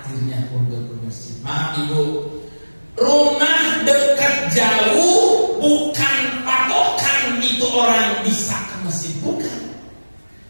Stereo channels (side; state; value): both; inverted; correlation -1.00